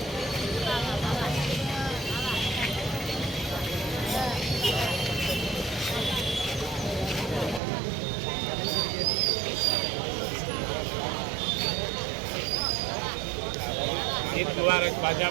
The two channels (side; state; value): left; drops out; at 7.6 s